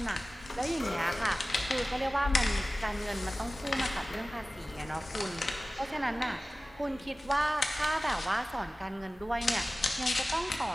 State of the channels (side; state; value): both; normal; correlation 0.96